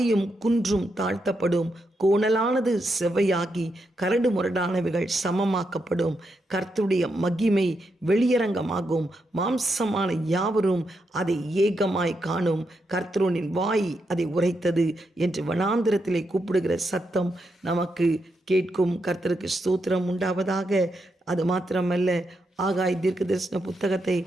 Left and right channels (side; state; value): both; normal; correlation 0.83